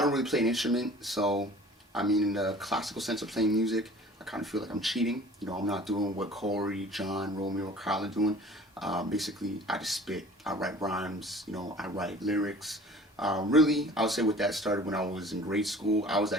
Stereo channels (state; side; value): normal; both; correlation 0.46